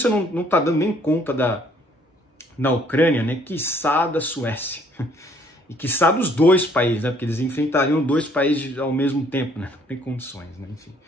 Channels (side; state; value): both; normal; correlation 0.62